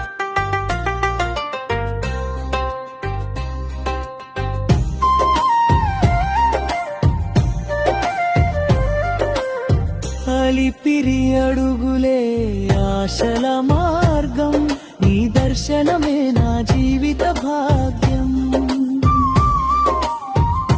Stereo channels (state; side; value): identical; both; correlation 1.00